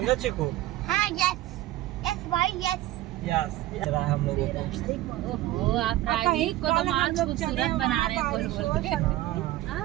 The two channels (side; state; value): left; quieter; 15.8 dB